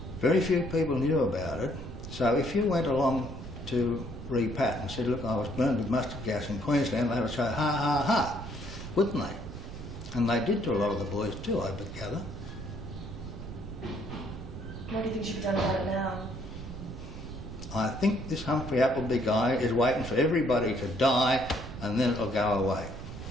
very few people knew about it. So if you went along to repat and said, look, I was burned with mustard gas in Queensland, they would say, ha, ha, ha, wouldn't they? And they did to a lot of the boys too, I would gather. What do you think should be done about it now? I think this Humphrey Appleby guy is waiting for everybody to die and then it'll go away.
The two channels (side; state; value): right; noise; rumble, 10 dB below the sound